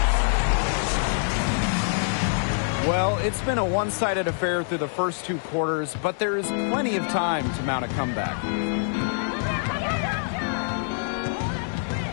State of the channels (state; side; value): silent; right; 62 dB below the other